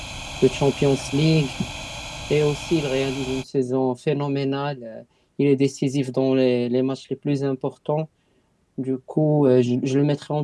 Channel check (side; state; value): both; identical; correlation 1.00